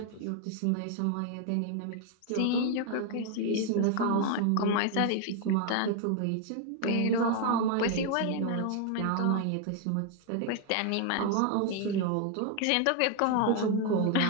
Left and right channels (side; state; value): both; different; correlation 0.00